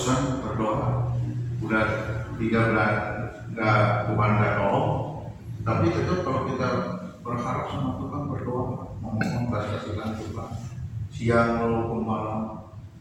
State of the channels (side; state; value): both; identical; correlation 1.00